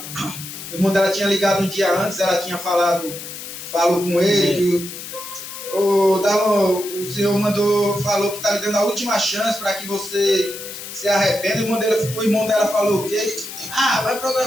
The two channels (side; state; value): left; noise; hiss, 10 dB below the sound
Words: o irmão dela tinha ligado um dia antes, ela tinha falou com ele, que o Senhor falou que está lhe dando a última chance para que você se arrependa. O irmão dela falou o quê? Vai